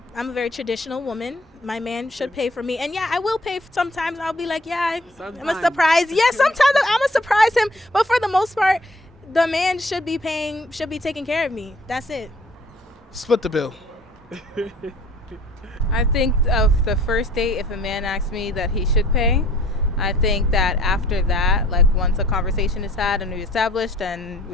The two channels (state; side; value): normal; both; correlation 0.55